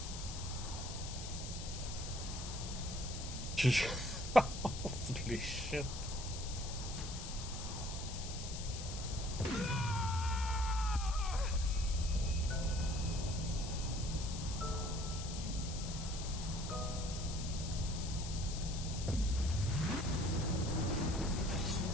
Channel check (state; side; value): noise; left; hiss, 9 dB below the sound